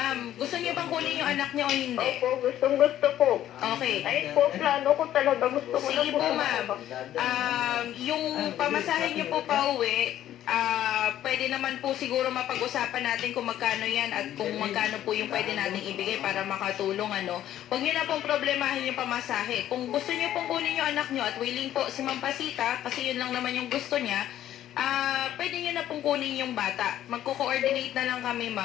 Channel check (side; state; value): right; quieter; 12.2 dB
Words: gusto niyo bang kunin yung anak niyo o hindi? Opo, gusto po. Okay. Ayun po, plano ko talaga. Gusto ko na Sige po. po, ma'am. Yung pamasahe niyo po pa uwi, pwede naman po siguro mapag-usapan natin kung magkano yan at kung magkano po yung pwede natin ibigay para makatulong, ano. Huwag niyo na pong problemahin yung pamasahe. Kung gusto niyo pong kunin yung anak niyo at willing po si Ma'am Pasita, kasi yun lang naman yung gusto niya, pwede nyo na pong kunin yung bata. Magko-coordinate na lang kami,